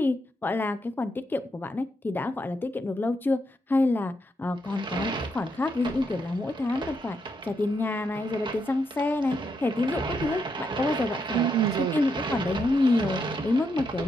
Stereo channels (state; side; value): normal; both; correlation 0.80